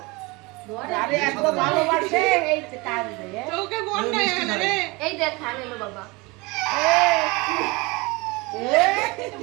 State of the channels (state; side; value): quieter; left; 25.3 dB